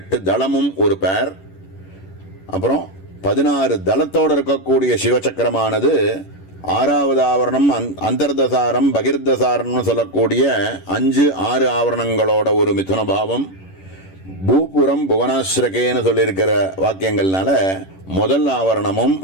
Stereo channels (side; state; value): right; late; 11 ms